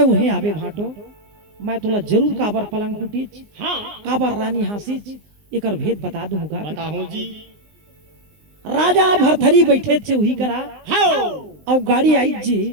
उहे आवे भाटो। मैं तोला जरूर काबर पलंग टूटी, हाँ काबर रानी हंसी, एकर भेद बता दूंगा। बताऊं जी। राजा भरथरी बैठे थे वही करा हाँ और गाड़ी आई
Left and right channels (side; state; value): left; late; 19 ms